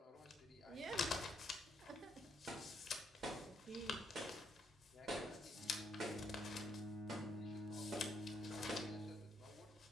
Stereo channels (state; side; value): normal; both; correlation 0.74